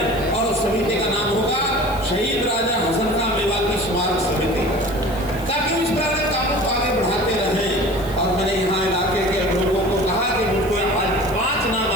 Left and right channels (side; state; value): left; noise; hiss, 19 dB below the sound